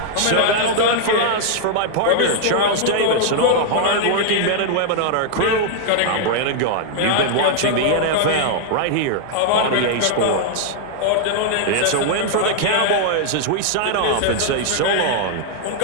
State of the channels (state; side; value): different; both; correlation 0.00